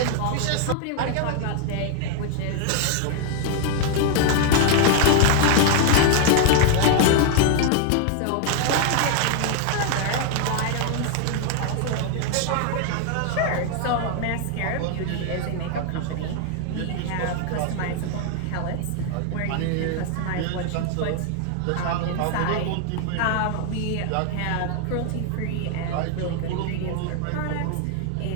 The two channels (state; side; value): different; both; correlation 0.00